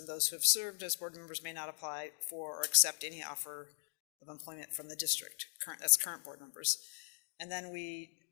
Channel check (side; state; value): right; silent; digital silence